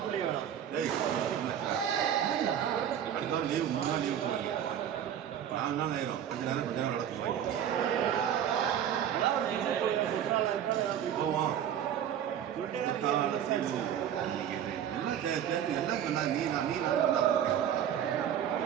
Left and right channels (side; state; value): left; quieter; 9.7 dB